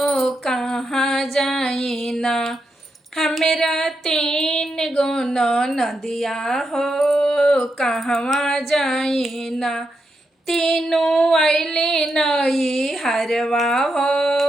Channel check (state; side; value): normal; both; correlation 0.84